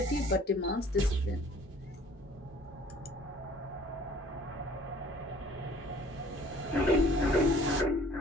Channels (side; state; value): both; normal; correlation 0.53